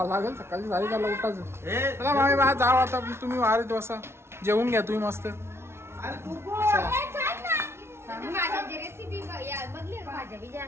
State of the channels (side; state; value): left; late; 0.12 ms